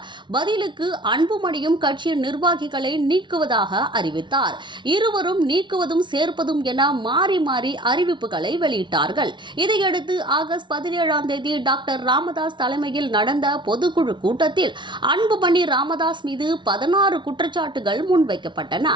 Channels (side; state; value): left; late; 0.23 ms